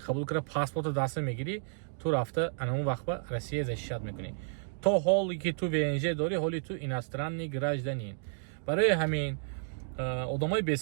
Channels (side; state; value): left; silent; digital silence